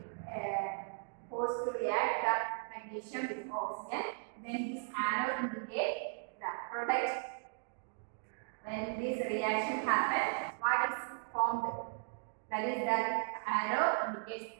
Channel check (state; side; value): silent; left; digital silence